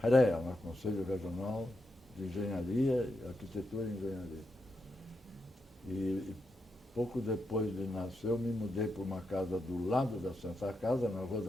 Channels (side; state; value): both; normal; correlation 0.85